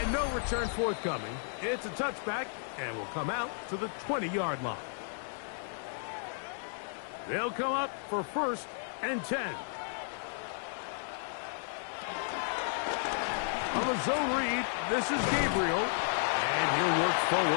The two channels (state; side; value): silent; right; digital silence